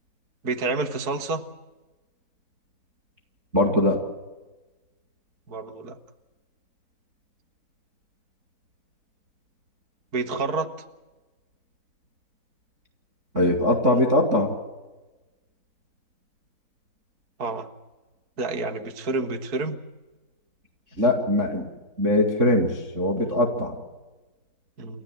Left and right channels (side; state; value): left; late; 4.5 ms